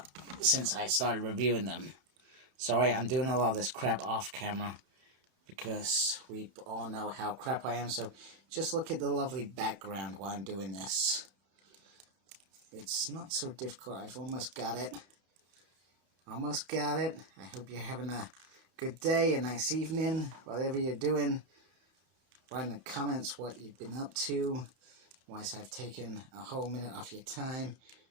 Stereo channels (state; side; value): late; left; 32 ms